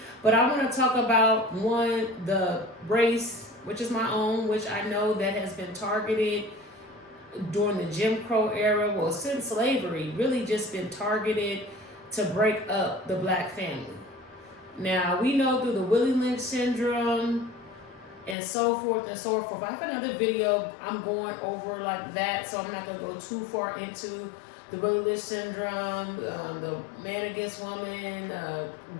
but I want to talk about one, the race, which is my own, which I know that has been targeted during the Jim Crow era, well, since slavery, really just been targeted to break up the black family. Now, we know through the Willie Lynch syndrome and so forth and so forth. I have another video I'm going over like that, so I'm not going to go too far into the Willie Lynch syndrome, the man against woman,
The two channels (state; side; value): drops out; right; at 18.4 s